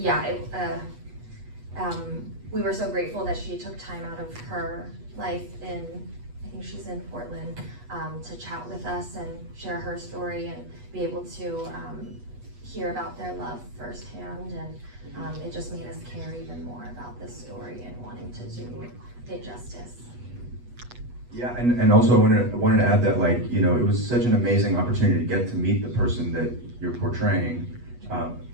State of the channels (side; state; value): left; late; 8.2 ms